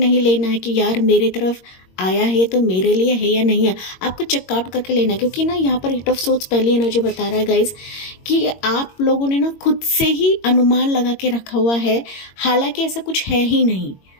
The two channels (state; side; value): late; right; 22 ms